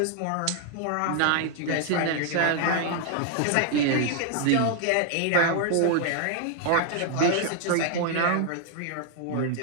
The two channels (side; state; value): both; different; correlation 0.00